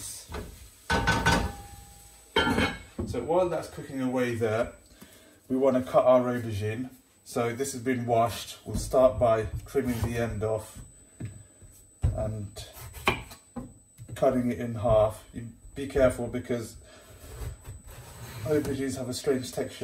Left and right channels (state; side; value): identical; both; correlation 1.00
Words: So while that's cooking away there, we want to cut our aubergine. So this has been washed. We'll start by trimming the end off and cutting it in half. You be careful because aubergines have a strange